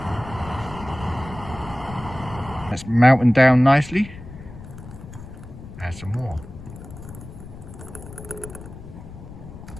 That's melting down nicely. Add some more.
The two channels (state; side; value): noise; left; rumble, 14 dB below the sound